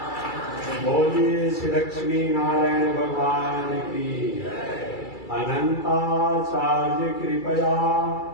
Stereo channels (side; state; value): right; late; 2.3 ms